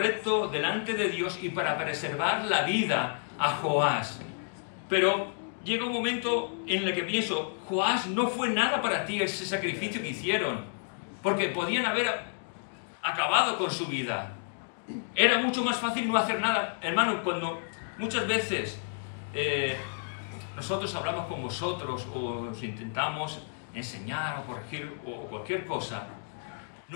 delante de Dios y para preservar la vida a Joás. Pero llega un momento en el que pienso, Joás, no fue nada para ti ese sacrificio que hicieron, porque podían haber acabado con su vida. Era mucho más fácil no hacer nada. Hermano, cuando muchas veces nosotros hablamos con vosotros o os intentamos enseñar o corregir o cualquier cosa,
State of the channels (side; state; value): right; silent; digital silence